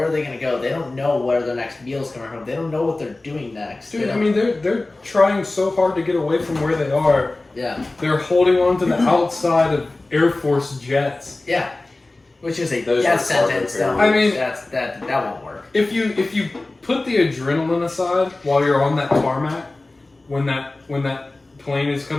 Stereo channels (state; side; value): quieter; right; 3.0 dB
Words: are they going to go? They don't know where their next meal's coming from. They don't know what they're doing next. Dude, I mean, they're trying so hard to get away from where they are. yeah, They're holding on to the outside of Air Force jets. yeah, which is a Those death are cargo sentence. carriers. I mean- that won't work. If you put the adrenaline aside while you're on that tarmac, when that plane is